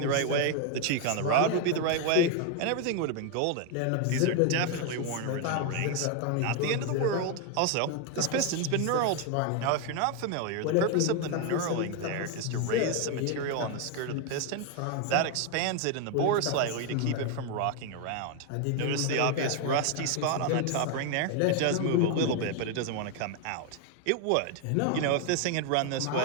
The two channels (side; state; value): both; different; correlation 0.01